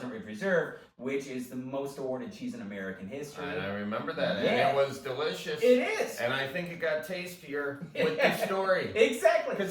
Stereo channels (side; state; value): both; identical; correlation 1.00